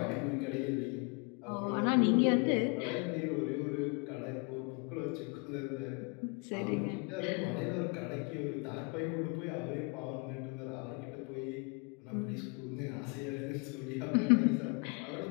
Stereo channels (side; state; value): right; quieter; 32.9 dB